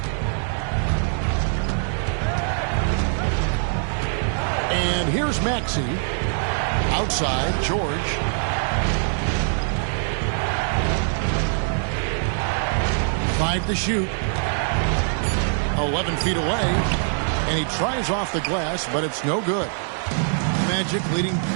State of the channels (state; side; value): silent; left; digital silence